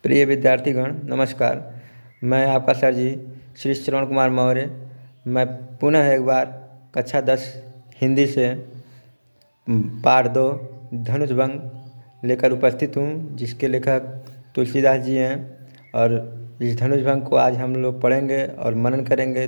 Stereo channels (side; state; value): both; inverted; correlation -1.00